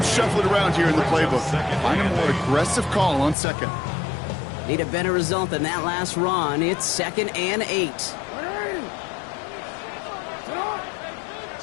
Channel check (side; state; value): right; drops out; at 3.4 s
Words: shuffling around here in the playbook. Find a more aggressive call on second. Need a better result than that last run. It's 2nd and 8.